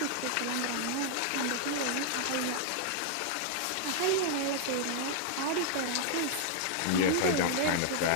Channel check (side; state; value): both; different; correlation 0.00